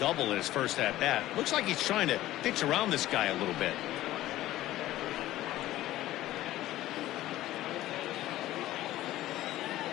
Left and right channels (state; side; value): quieter; right; 15.1 dB